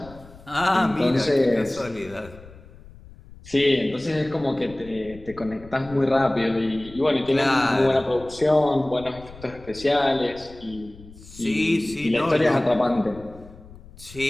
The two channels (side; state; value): left; noise; rumble, 20 dB below the sound